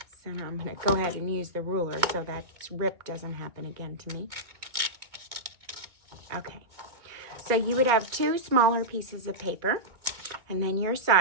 So now I'm going to go ahead and use the ruler so that rip doesn't happen again to me. Okay. So you would have two smaller pieces of paper, and then your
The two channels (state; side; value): late; left; 2.2 ms